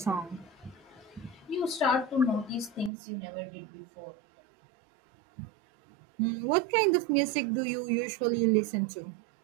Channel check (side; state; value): left; drops out; at 2.9 s